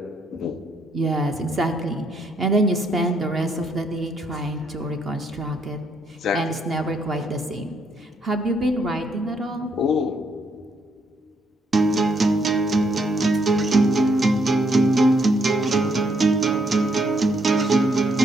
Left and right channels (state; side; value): normal; both; correlation 0.73